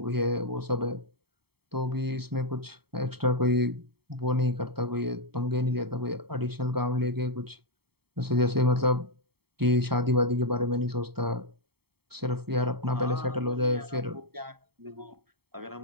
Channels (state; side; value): late; left; 0.96 ms